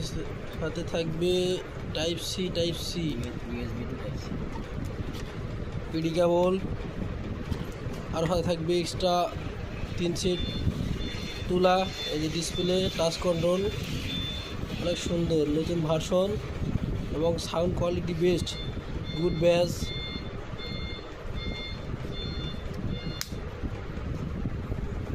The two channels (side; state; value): both; identical; correlation 1.00